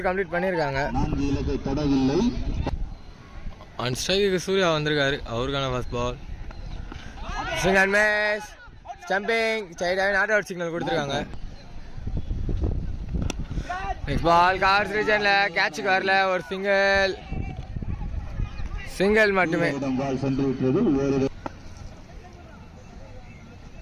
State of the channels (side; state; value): both; identical; correlation 1.00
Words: கம்ப்ளீட் பண்ணியிருக்காங்க. ஆன் ஸ்ட்ரைக்கு சூர்யா வந்திருக்காரு, அவருக்கான first ball. Swing and miss, stumping, ஸ்ட்ரைட்டாகவே நாட் அவுட் சிக்னல் கொடுத்துருக்காங்க. நெக்ஸ்ட் பால் கார்ஸ் ரீஜன்ல கேட்சுக்கு வரல, ஒரு சிங்கிள் மட்டுமே.